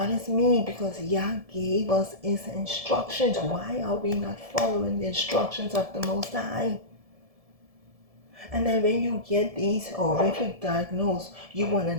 me because Yah gave us his instructions. Why are we not following the instructions of the Most High? And then when you get these horrific diagnoses, you want to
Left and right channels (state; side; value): late; left; 1.7 ms